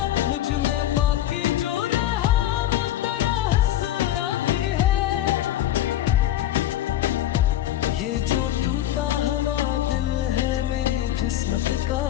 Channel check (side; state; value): right; quieter; 13.0 dB